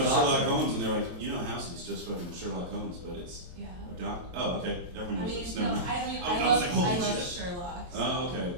a Sherlock doctor. Holmes, and they're like, you know, House is just fucking Sherlock Holmes, but it's Yeah. a doc. Oh, okay. Everyone I knows mean, this. no, Never mind. I mean, I I was like, holy love shit. Sherlock. So. Oh, okay.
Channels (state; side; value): late; left; 23 ms